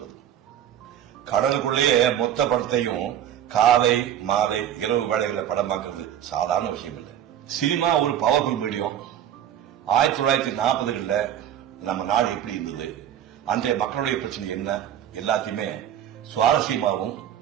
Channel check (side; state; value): left; quieter; 10.4 dB